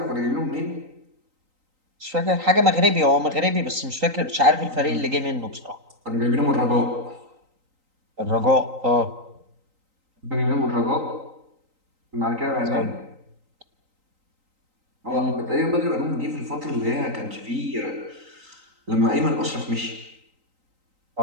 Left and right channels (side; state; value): left; late; 3.9 ms